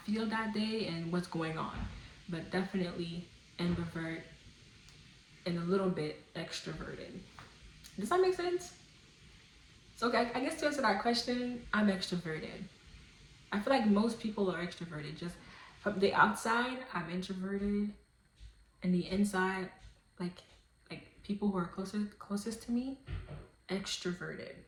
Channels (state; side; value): identical; both; correlation 1.00